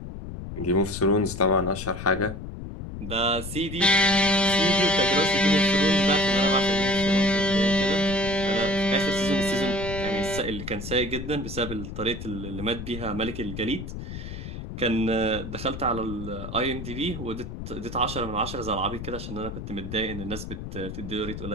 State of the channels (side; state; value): left; noise; rumble, 9 dB below the sound